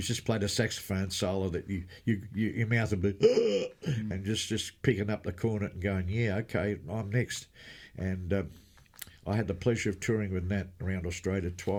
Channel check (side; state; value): both; identical; correlation 1.00